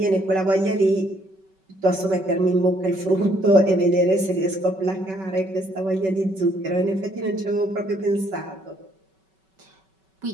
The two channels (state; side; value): late; left; 5.3 ms